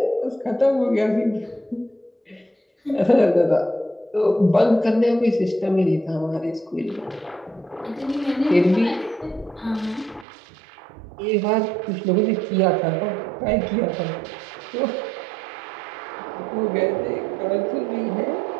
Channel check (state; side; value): drops out; left; at 10.2 s